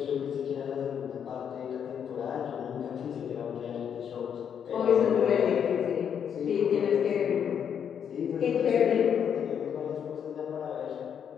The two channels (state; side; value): quieter; right; 8.1 dB